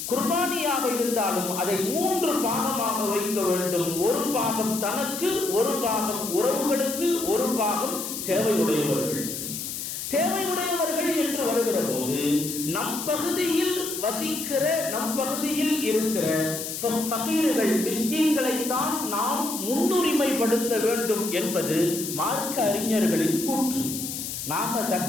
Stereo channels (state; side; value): noise; left; hiss, 6 dB below the sound